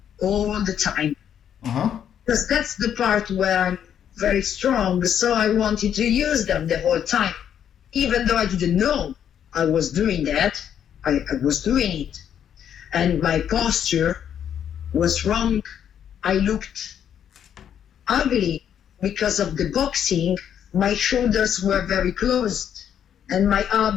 all the time. Uh-huh. Because that's the part where I'm very strong, so I wanted to use them the whole time. Even though I didn't know I was doing that, I was doing it. And my posture was wrong. I looked ugly because of the boxing. My shoulders were very closed and my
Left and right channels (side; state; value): right; quieter; 9.2 dB